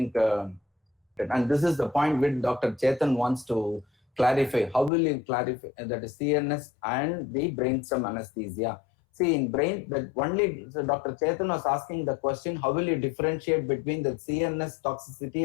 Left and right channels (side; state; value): right; drops out; at 4.9 s